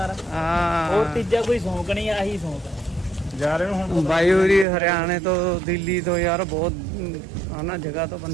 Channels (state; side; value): drops out; left; at 4.7 s